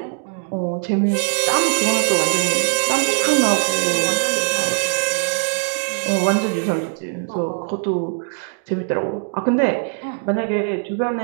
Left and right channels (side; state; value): left; silent; 57 dB below the other